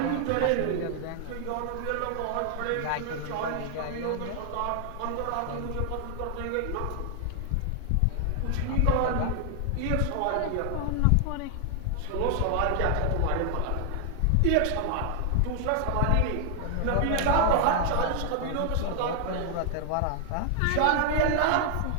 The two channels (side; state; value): both; different; correlation 0.00